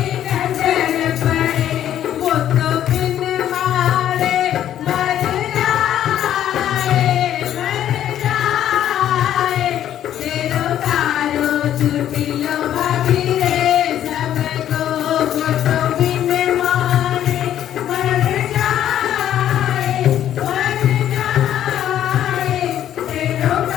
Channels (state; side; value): quieter; right; 11.1 dB